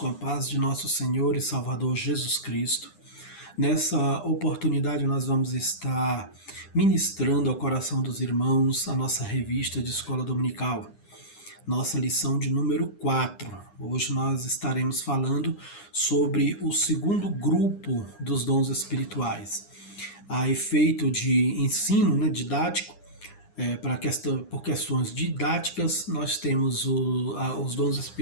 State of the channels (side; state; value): right; late; 9.9 ms